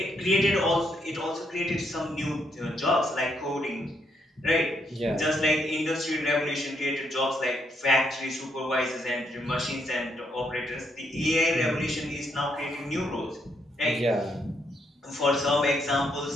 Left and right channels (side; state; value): both; normal; correlation 0.75